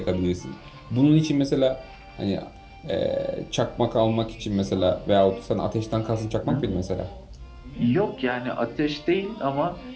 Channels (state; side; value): identical; both; correlation 1.00